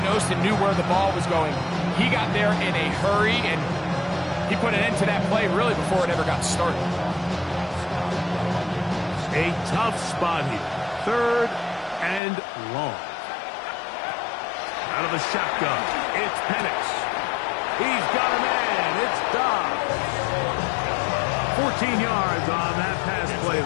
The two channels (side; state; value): right; drops out; at 12.2 s